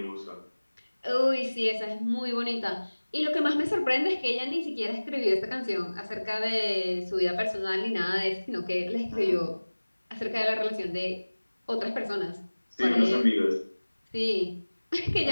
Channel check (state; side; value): inverted; both; correlation -1.00